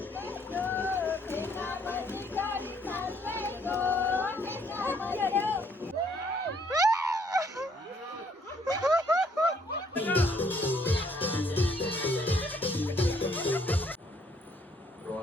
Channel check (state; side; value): normal; both; correlation 0.66